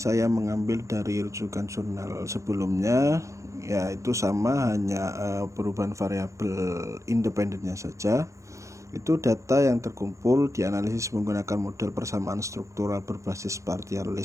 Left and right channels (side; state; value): left; late; 0.15 ms